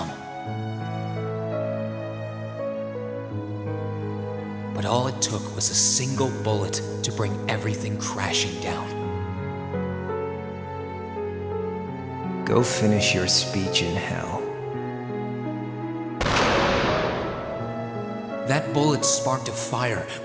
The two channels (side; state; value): both; identical; correlation 1.00